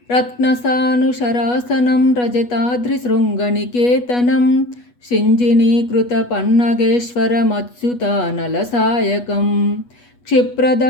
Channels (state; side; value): late; right; 8.2 ms